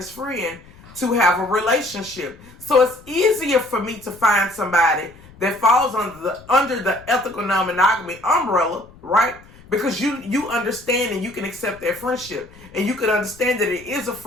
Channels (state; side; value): noise; left; rumble, 23 dB below the sound